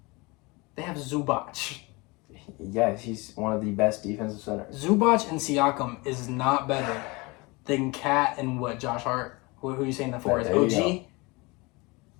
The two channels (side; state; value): right; quieter; 25.4 dB